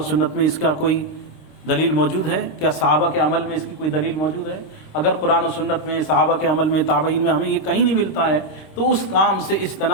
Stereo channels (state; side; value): late; right; 26 ms